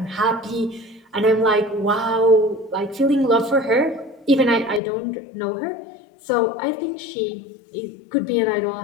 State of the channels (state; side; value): drops out; right; at 4.8 s